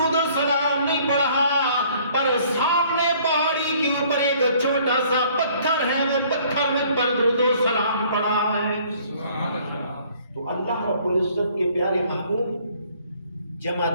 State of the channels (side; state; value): both; inverted; correlation -0.58